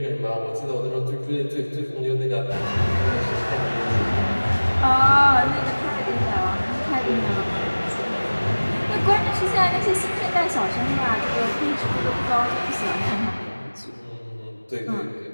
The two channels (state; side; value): inverted; both; correlation -1.00